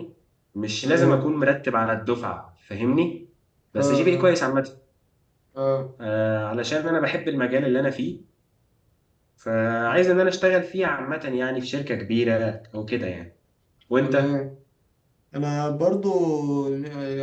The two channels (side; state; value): both; identical; correlation 1.00